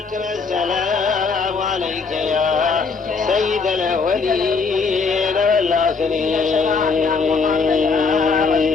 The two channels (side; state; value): right; quieter; 4.7 dB